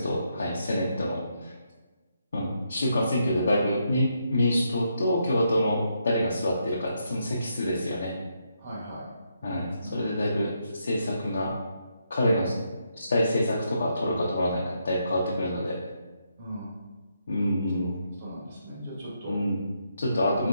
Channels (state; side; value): inverted; both; correlation -0.79